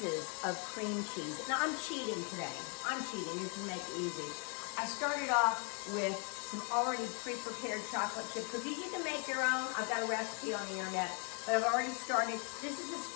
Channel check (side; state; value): right; quieter; 38.8 dB